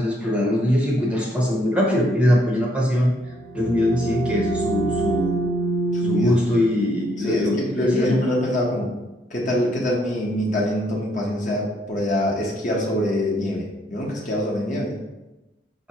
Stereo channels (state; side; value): normal; both; correlation 0.70